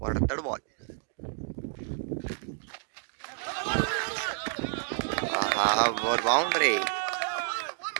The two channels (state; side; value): silent; left; digital silence